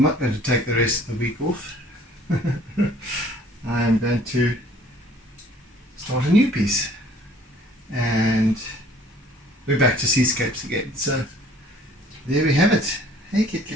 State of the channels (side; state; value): both; normal; correlation 0.55